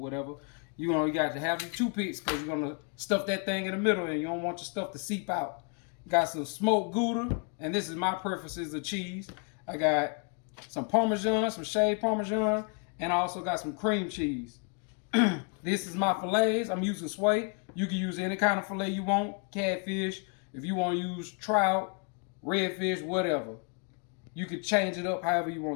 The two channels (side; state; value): right; quieter; 37.7 dB